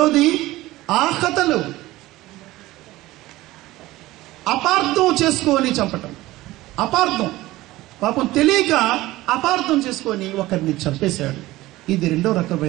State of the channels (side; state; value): left; quieter; 17.8 dB